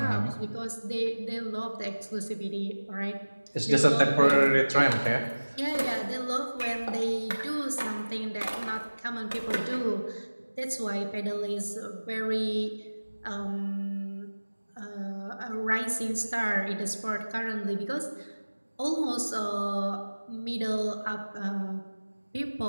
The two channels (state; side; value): inverted; both; correlation -1.00